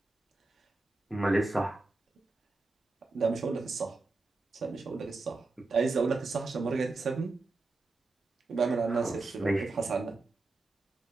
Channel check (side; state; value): left; quieter; 3.3 dB